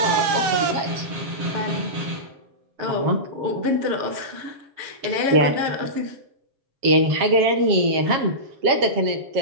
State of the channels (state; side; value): late; left; 7.5 ms